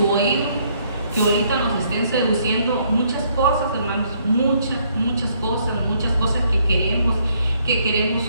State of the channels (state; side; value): inverted; both; correlation -0.68